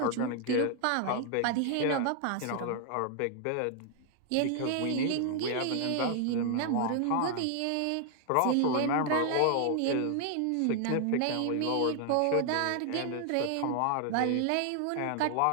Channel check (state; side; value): different; both; correlation 0.00